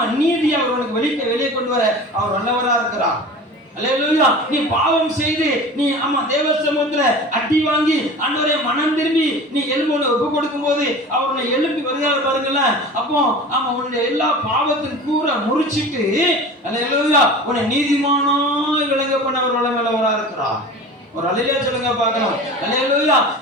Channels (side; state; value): both; normal; correlation 0.37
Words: நீதி அவர் உனக்கு வெளியே கொண்டு வர அவர் நல்லவரா இருக்கிறார். அல்லேலூயா. நீ பாவம் செய்து நீ, ஆமா, தேவ சமூகத்துல அடி வாங்கி ஆண்டவரே மனம் திரும்பி நீ எலும்பு ஒப்பு கொடுக்கும் போது அவர் உன்னை எழுப்பி வருகிறார் பாருங்கல்ல. அப்போ ஆமா, உன்னுடைய எல்லா பாவத்தின் கூற முறிச்சிட்டு, அல்லேலூயா, உன்னை நீதிமானாய் விளங்க பண்ண அவர் வல்லவரா இருக்கிறார். ஒரு அல்லேலூயா சொல்லுங்க பார்க்கலாம். அல்லேலூயா.